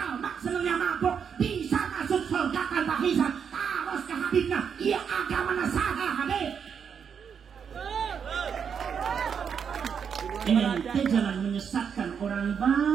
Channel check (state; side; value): quieter; left; 7.1 dB